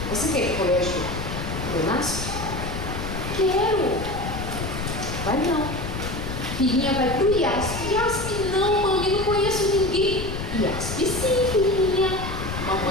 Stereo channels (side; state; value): left; noise; rumble, 6 dB below the sound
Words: Você quer ir para o colégio do NASP? Quero. Vai não. Filhinha vai para o IASP. IASP não, mami, não conheço ninguém. IASP sim, filhinha.